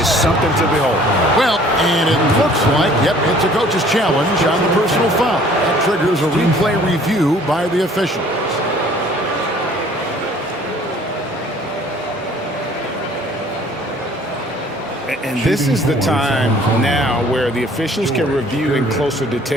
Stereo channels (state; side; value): normal; both; correlation 0.54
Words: something to behold. Well, and it looks like, yep, it's a coach's challenge on the personal foul. That triggers a replay review by the officials. And this is the time now where the officials can review in closer